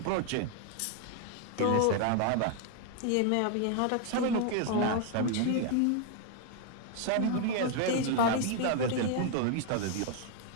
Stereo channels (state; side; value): different; both; correlation 0.01